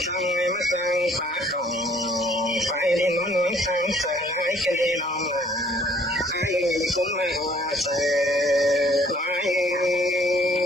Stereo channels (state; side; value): normal; both; correlation 0.59